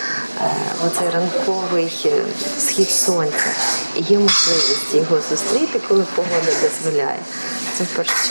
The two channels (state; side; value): inverted; both; correlation -1.00